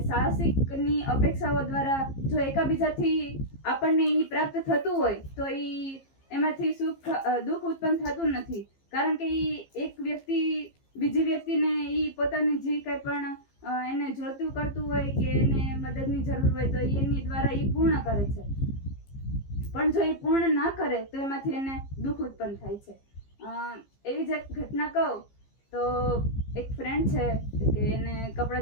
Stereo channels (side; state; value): right; late; 15 ms